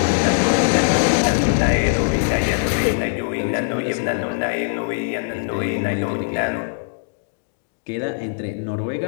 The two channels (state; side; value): silent; right; digital silence